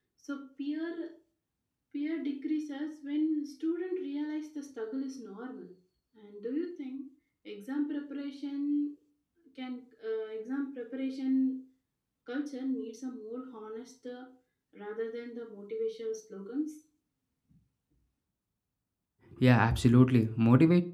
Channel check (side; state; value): both; identical; correlation 1.00